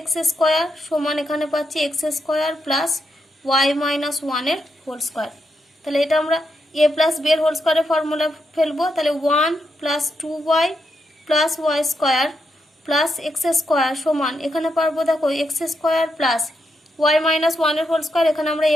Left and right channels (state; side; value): normal; both; correlation 0.83